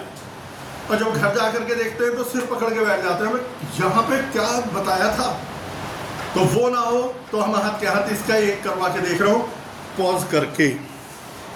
और जब घर जा करके देखते हैं तो सिर पकड़ के बैठ जाते हैं, यहाँ पे क्या बताया था, तो वो ना हो तो हम हाथ के हाथ इसका एक करवा के देख रहा हूँ पॉज करके।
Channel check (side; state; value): both; identical; correlation 1.00